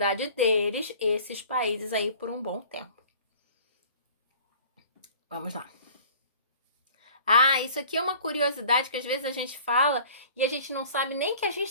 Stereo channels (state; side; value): inverted; both; correlation -0.47